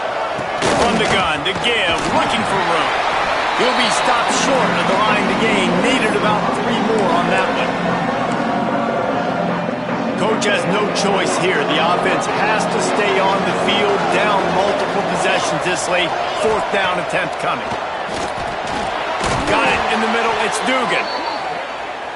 From the gun to give, looking for room. He'll be stopped short of the line to gain. Needed about 3 more on that one. Coach has no choice here. The offense has to stay on the field, down multiple possessions this late. 4th down attempt coming. Got it in the middle. It's Dugan.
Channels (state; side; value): identical; both; correlation 1.00